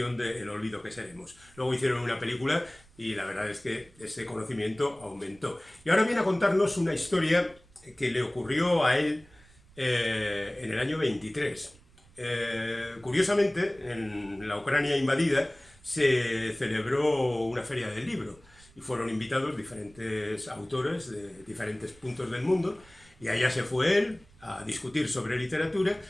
de El olvido que seremos. Luego hicieron una película y la verdad es que ese conocimiento aumentó. Y ahora viene a contarnos una historia que le ocurrió a él en el año 23. Curiosamente, en la Ucrania invadida se celebró una feria del libro y fueron invitados diferentes autores de diferentes puntos del mundo, y allá se fue él a discutir sobre literatura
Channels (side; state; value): right; noise; rumble, 27 dB below the sound